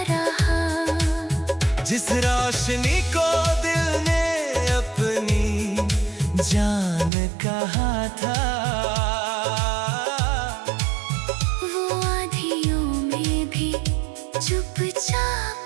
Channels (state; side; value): drops out; left; at 7.1 s